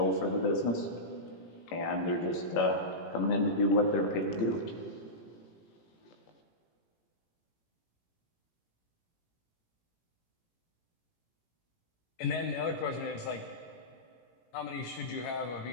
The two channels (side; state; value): right; late; 18 ms